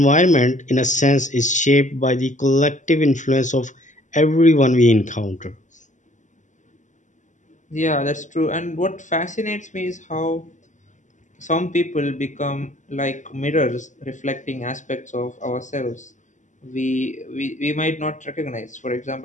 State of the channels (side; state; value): right; late; 0.36 ms